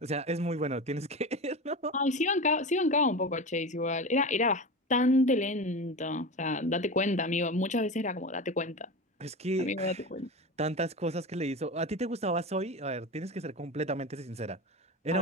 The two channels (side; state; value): both; normal; correlation 0.26